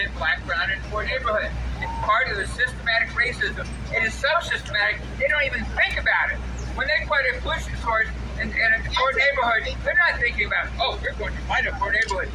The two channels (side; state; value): both; identical; correlation 1.00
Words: black, brown, and poor neighborhoods. It's part of the systematic racism. It is so systematic, they don't even think about it. When they put a pollution source in a poor neighborhood, they're not thinking about, oh, we're going to find a poor neighborhood.